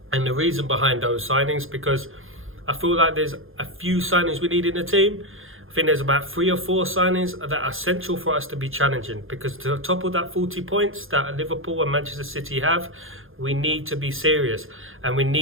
and the reason behind those signings, because I feel like there's a few signings we need in the team. I think there's about 3 or 4 signings that are essential for us to be challenging, because to topple that 40 points that Liverpool and Manchester City have, we need to be serious and we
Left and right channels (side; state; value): left; late; 0.60 ms